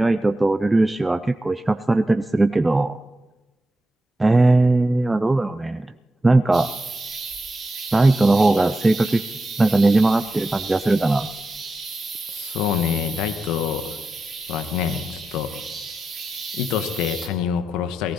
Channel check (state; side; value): normal; both; correlation 0.91